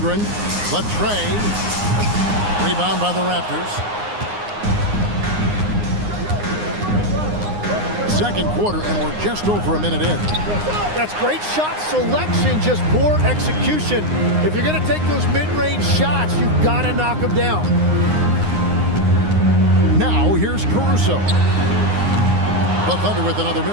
Latrey. Rebound by the Raptors. Second quarter, and we're just over a minute in. That's great shot selection, just poor execution. If you're going to take those mid-range shots, you've got to knock them down. Now, here's Caruso. The Thunder with another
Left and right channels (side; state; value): left; late; 9.7 ms